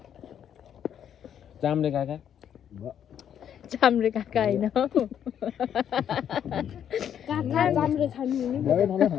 चाम्रे काका चाम्रे काका होइन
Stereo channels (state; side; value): quieter; right; 9.3 dB